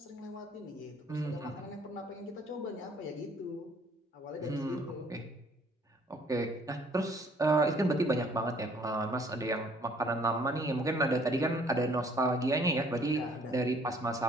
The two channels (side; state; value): both; normal; correlation 0.60